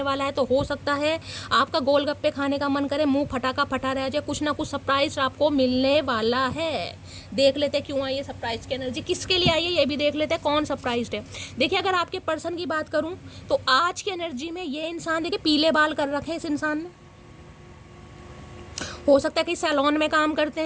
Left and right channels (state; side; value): identical; both; correlation 1.00